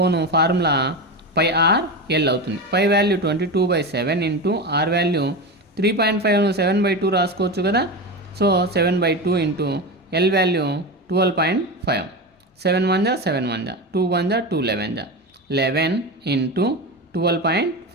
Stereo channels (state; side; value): normal; both; correlation 0.21